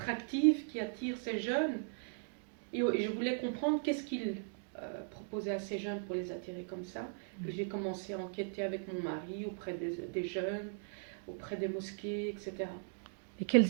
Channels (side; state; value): left; silent; digital silence